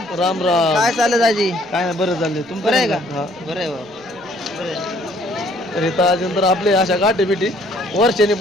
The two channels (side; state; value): right; noise; rumble, 30 dB below the sound